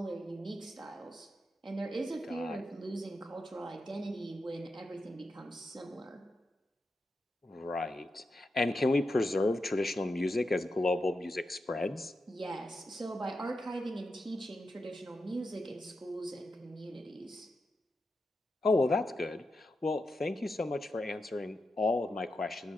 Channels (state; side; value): normal; both; correlation 0.88